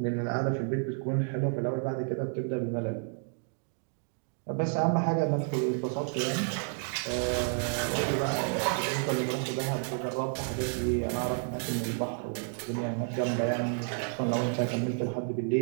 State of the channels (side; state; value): left; silent; 57 dB below the other